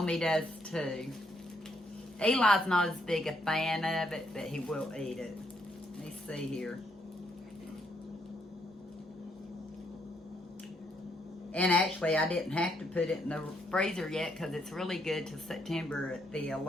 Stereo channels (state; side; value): normal; both; correlation 0.74